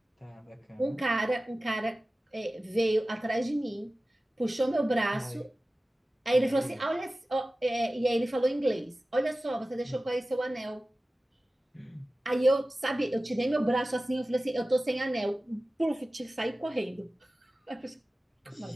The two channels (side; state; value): both; normal; correlation 0.96